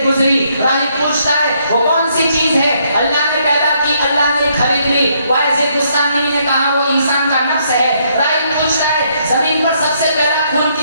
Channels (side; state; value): both; inverted; correlation -0.72